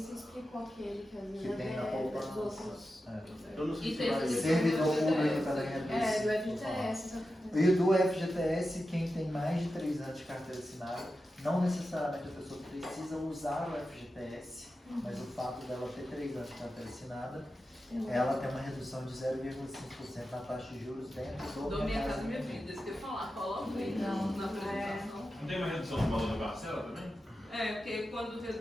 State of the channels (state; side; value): normal; both; correlation 0.91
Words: explicou aquele que às vezes Que tem na dos poupança. outros. Eu não sei E se tem vai esse- Servidor público também Do FGTS. E o do FGTS, quem tem mais de 3 anos de carteira assinada, não necessariamente a pessoa precisa usar o FGTS, mas o fato dela ter 3 anos de carteira assinada, ela tem uma redução de 0,5% na taxa de juros dentro Do Minha Casa Minha Vida, isso que eu ia falar, coloca aí na apresentação. Não tem uma redução do valor da parcela também? É, porque quando